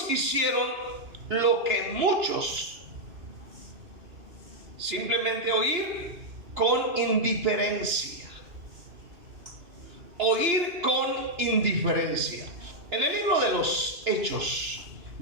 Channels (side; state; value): left; late; 2.8 ms